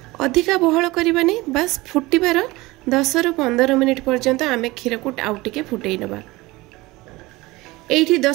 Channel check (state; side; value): quieter; left; 20.8 dB